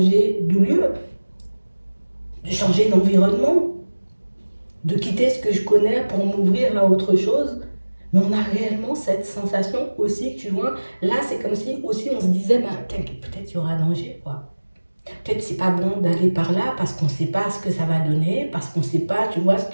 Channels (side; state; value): both; inverted; correlation -1.00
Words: de lieu, de changer d'environnement, de quitter ce que je connais pour m'ouvrir à autre chose. Mais on a réellement cette sensation aussi, tu vois. Là, c'est comme si aussi on se disait, bah, peut-être il y aura danger, quoi. Peut-être c'est pas bon d'aller par là parce qu'on ne sait pas ce que ça va donner, parce qu'on ne sait pas, tu vois, ce